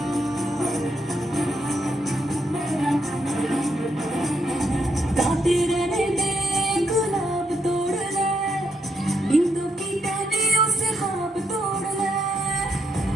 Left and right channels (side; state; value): both; normal; correlation 0.78